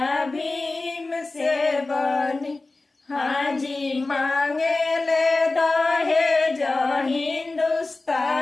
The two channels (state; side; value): quieter; right; 3.3 dB